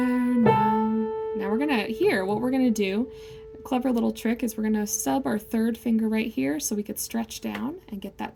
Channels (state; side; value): identical; both; correlation 1.00